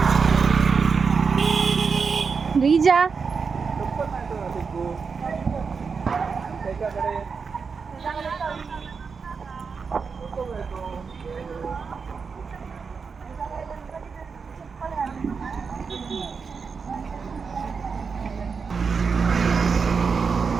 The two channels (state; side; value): quieter; left; 5.4 dB